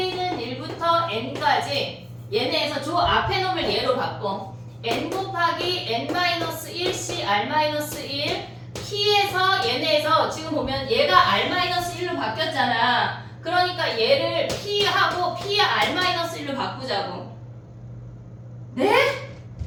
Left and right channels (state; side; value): identical; both; correlation 1.00